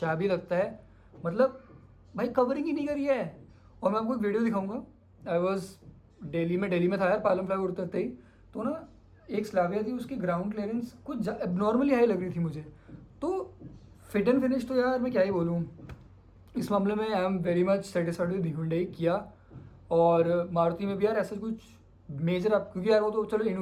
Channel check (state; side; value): identical; both; correlation 1.00